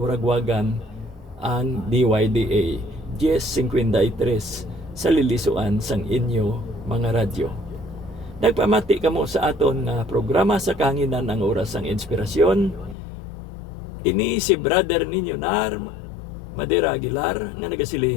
ang DYDA 10:53 sa lilisuan sang inyo mga radyo. Nagpamati kamo sa aton nga programa sa kahanginan, ang Oras sang Inspirasyon. Ini si brother ninyo Nar Madera Aguilar nga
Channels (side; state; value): right; drops out; at 13.0 s